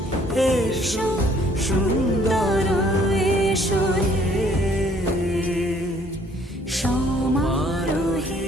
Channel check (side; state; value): both; normal; correlation 0.61